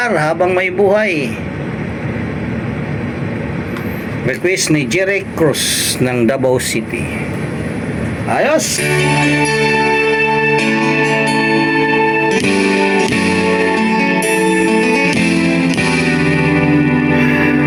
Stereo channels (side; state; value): both; identical; correlation 1.00